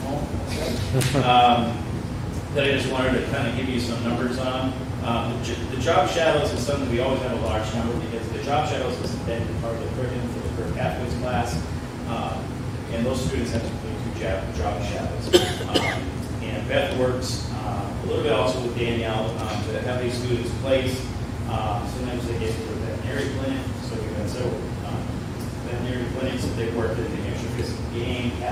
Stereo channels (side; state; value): both; identical; correlation 1.00